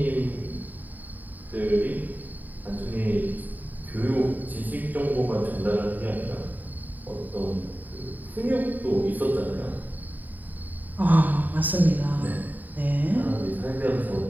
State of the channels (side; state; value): left; late; 0.086 ms